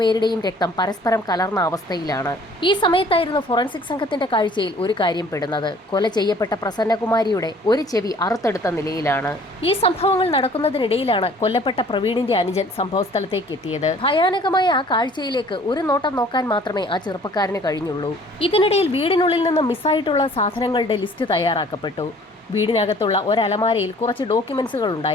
രക്തം പരസ്പരം കലർന്ന അവസ്ഥയിലാണ്. ഈ സമയത്തായിരുന്നു ഫോറൻസിക് സംഘത്തിന്റെ കാഴ്ചയിൽ ഒരു കാര്യം പെടുന്നത്. കൊല ചെയ്യപ്പെട്ട പ്രസന്നകുമാരിയുടെ ഒരു ചെവി അറുത്തെടുത്ത നിലയിലാണ്. ഈ സംഭവങ്ങൾ നടക്കുന്നതിനിടയിലാണ് കൊല്ലപ്പെട്ട പ്രവീണിന്റെ അനുജൻ സംഭവസ്ഥലത്തേക്ക് എത്തിയത്. ഭയാനകമായ ആ കാഴ്ചയിലേക്ക് ഒരു നോട്ടം നോക്കാൻ മാത്രമേ ആ ചെറുപ്പക്കാരന് കഴിഞ്ഞുള്ളൂ. ഇതിനിടയിൽ വീടിനുള്ളിൽ നിന്ന് മിസ്സായിട്ടുള്ള സാധനങ്ങളുടെ ലിസ്റ്റ് തയ്യാറാക്കപ്പെട്ടു. വീടിനകത്തുള്ള ഒരലമാരയിൽ കുറച്ച് ഡോക്യുമെന്റ്സുകൾ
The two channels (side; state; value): both; normal; correlation 0.53